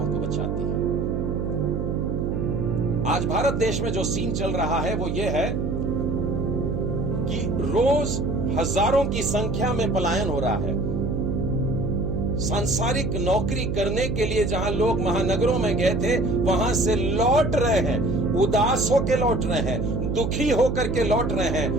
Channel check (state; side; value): noise; right; hum, 1 dB below the sound